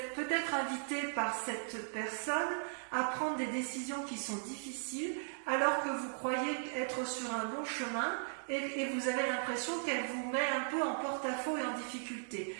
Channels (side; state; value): left; silent; digital silence